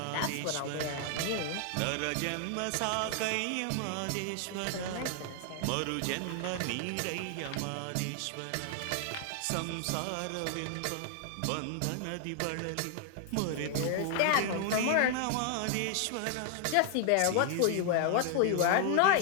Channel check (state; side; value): different; both; correlation 0.00